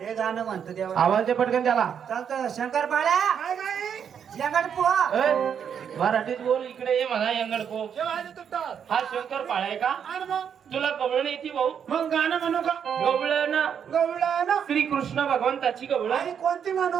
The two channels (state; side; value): quieter; left; 7.9 dB